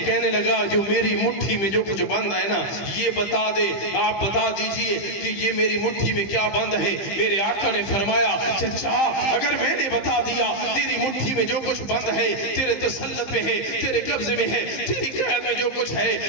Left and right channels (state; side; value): late; right; 15 ms